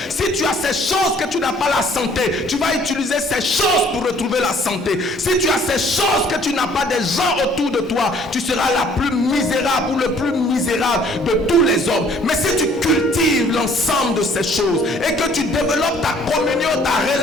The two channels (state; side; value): normal; both; correlation 0.58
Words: Si tu as ces choses que tu n'as pas la santé, tu vas utiliser ces choses pour retrouver la santé. Si tu as ces choses que tu n'as pas des gens autour de toi, tu seras la plus misérable ou le plus misérable de tous les hommes. Mais si tu cultives l'ensemble de ces choses et que tu développes ta communion, ta